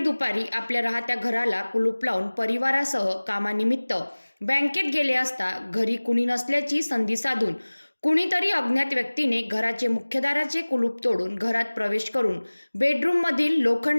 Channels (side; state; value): both; inverted; correlation -1.00